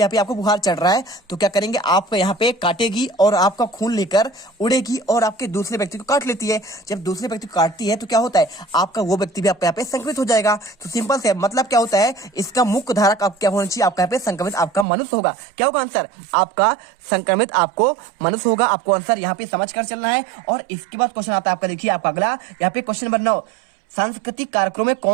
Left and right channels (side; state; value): left; drops out; at 14.9 s